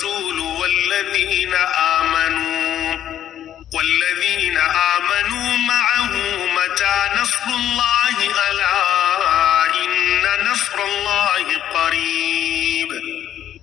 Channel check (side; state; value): right; quieter; 10.9 dB